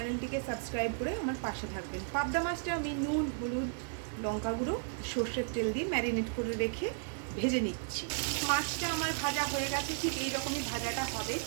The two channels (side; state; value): left; silent; digital silence